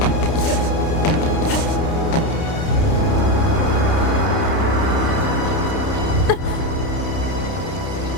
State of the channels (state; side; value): late; right; 30 ms